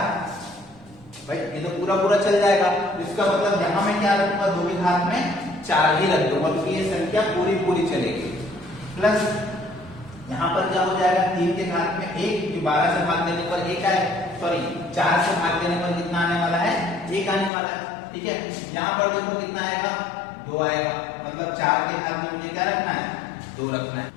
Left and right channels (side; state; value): right; drops out; at 17.5 s